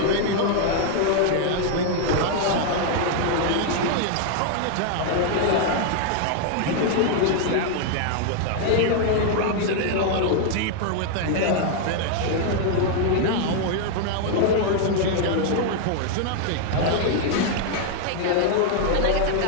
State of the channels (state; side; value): different; both; correlation 0.00